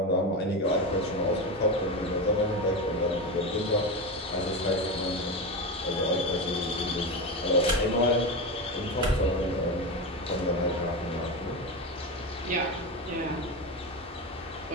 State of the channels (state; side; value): normal; both; correlation 0.19